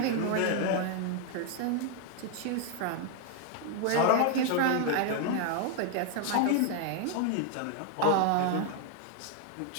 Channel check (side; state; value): both; different; correlation 0.00